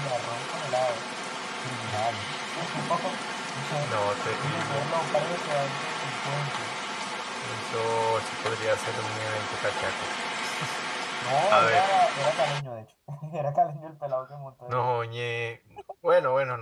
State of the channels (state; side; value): identical; both; correlation 1.00